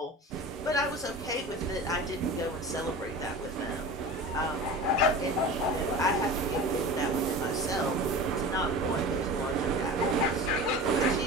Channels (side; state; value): both; normal; correlation 0.34